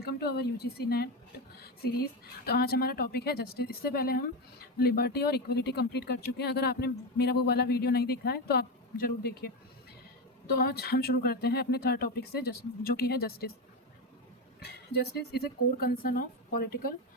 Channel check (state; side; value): normal; both; correlation 0.14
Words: to our UGC NET series. तो आज हमारा टॉपिक है जस्टिस। इससे पहले हम लिबर्टी और इक्वलिटी कंप्लीट कर चुके हैं। अगर आपने मेरा वो वाला वीडियो नहीं देखा है तो आप ज़रूर देखिए। तो आज हम शुरू करते हैं अपने थर्ड टॉपिक से, जो कि है justice. Justice is a core concern of political